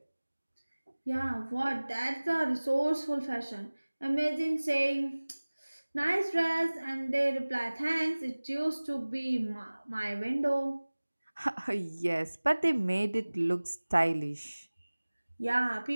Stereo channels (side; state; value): both; inverted; correlation -1.00